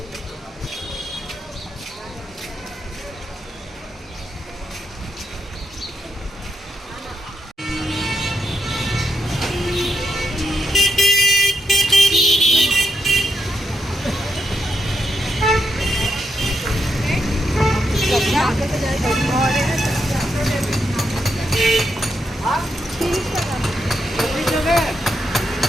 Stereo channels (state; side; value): normal; both; correlation 0.82